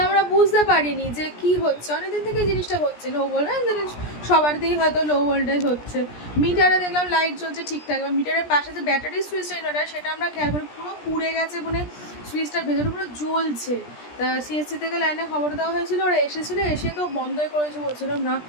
আমরা বুঝতে পারিনি যে কি হচ্ছে। অনেকদিন থেকে এই জিনিসটা হচ্ছে, লো ভোল্টেজ সবার দিয়েই হয়তো লো ভোল্টেজ হচ্ছে। মিটারে দেখলাম লাইট জ্বলছে ঠিকঠাক, এবার মিটারের পাশে যে ব্যাটারি সুইচটা ইনভার্টার, সেটা আমরা খেয়াল করি পুরো পুড়ে গেছে, মানে সুইচটার ভেতরে পুরো জ্বলছে। তা সিএসসি থেকে লাইনে খবর দেওয়া হয়েছিল, ওরা এসেছিলো, এসে তো বন্ধই করেছে, বলছিলাম না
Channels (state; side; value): late; right; 17 ms